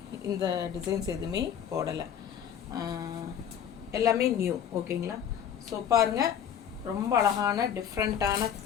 இந்த டிசைன்ஸ் எதுவுமே போடலை, எல்லாமே நியூ. ஓகேங்களா, ஸோ பாருங்கள், ரொம்ப அழகான டிஃப்ரெண்ட்டான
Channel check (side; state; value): right; quieter; 8.9 dB